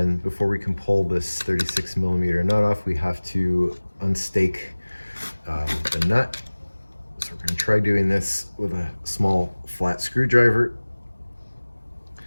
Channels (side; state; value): both; inverted; correlation -1.00